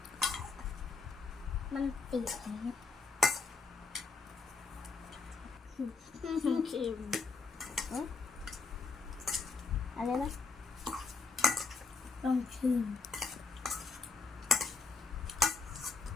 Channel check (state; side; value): quieter; right; 4.3 dB